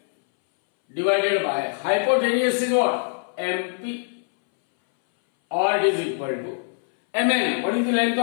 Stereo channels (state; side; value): silent; right; 63 dB below the other